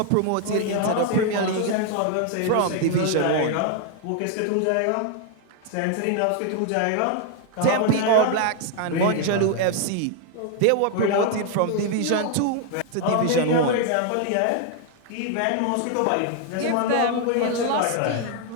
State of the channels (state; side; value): different; both; correlation 0.01